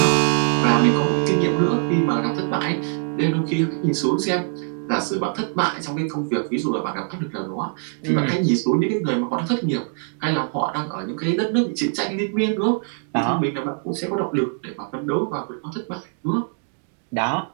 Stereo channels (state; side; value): silent; left; 55 dB below the other